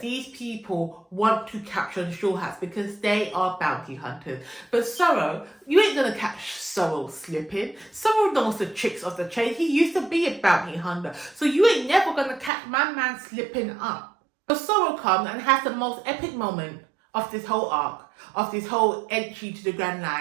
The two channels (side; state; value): left; drops out; at 12.5 s